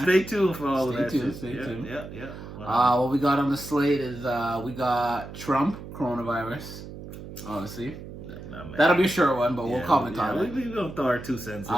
Stay tuned for all of that shit. Stay tuned. Yeah. What we got on the slate is we got Trump, coronavirus, obviously. That'll be a short one, but we'll comment on it. We're going to throw our 2 cents in.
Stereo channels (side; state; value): right; noise; hum, 12 dB below the sound